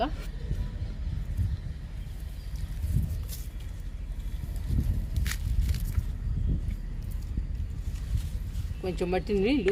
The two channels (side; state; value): both; identical; correlation 1.00